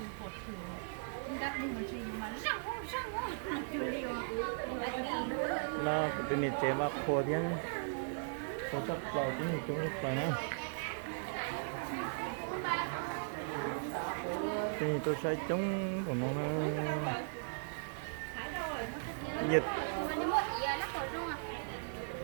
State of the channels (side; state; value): left; silent; digital silence